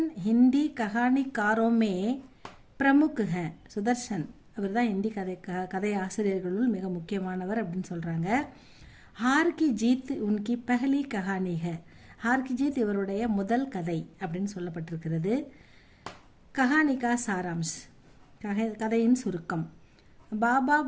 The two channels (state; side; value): identical; both; correlation 1.00